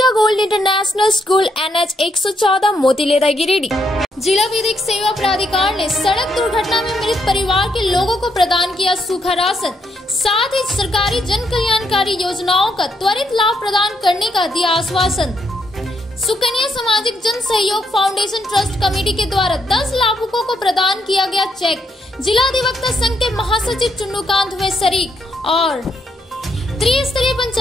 gold international school NH 114 Motileda Giridih. जिला विधिक सेवा प्राधिकार ने सड़क दुर्घटना में मृत परिवार के लोगों को प्रदान किया सूखा राशन, साथ ही सरकारी जन कल्याणकारी योजनाओं का त्वरित लाभ प्रदान करने का दिया आश्वासन। सुकन्या सामाजिक जन सहयोग फाउंडेशन ट्रस्ट कमेटी के द्वारा 10 लाभुकों को प्रदान किया गया चेक। जिला अधिवक्ता संघ के महासचिव चुन्नूकांत हुए शरीक। और त्रिस्तरीय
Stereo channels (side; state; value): both; normal; correlation 0.76